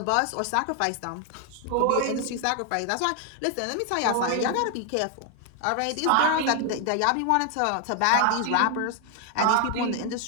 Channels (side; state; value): both; different; correlation 0.00